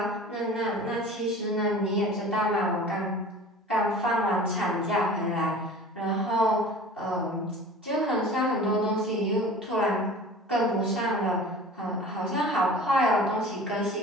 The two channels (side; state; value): both; normal; correlation 0.41